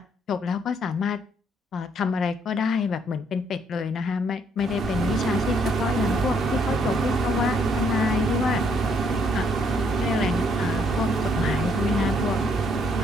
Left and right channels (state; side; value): normal; both; correlation 0.69